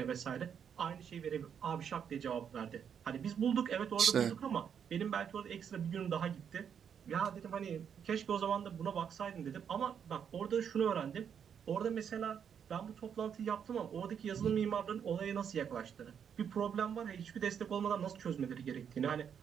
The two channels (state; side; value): quieter; left; 7.8 dB